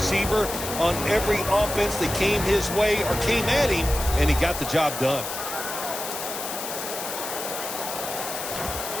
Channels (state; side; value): noise; left; hiss, 6 dB below the sound